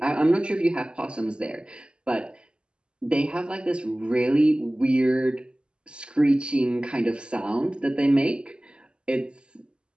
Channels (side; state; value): left; late; 0.052 ms